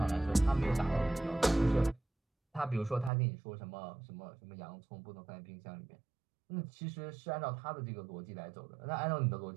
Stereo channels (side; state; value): left; drops out; at 3.1 s